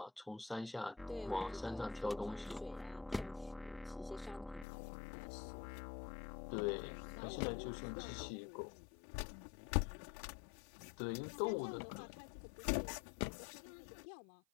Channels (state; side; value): drops out; right; at 4.7 s